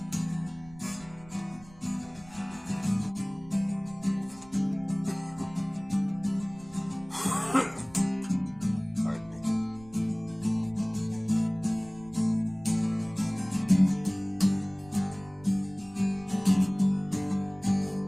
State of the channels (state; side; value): noise; right; rumble, 22 dB below the sound